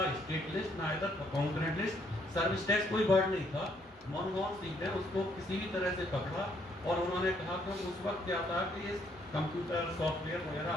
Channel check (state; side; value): normal; both; correlation 0.69